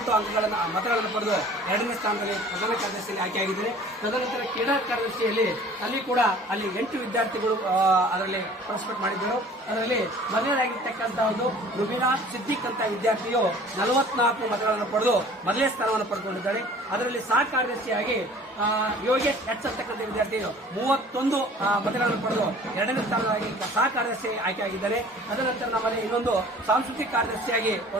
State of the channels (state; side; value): normal; both; correlation 0.48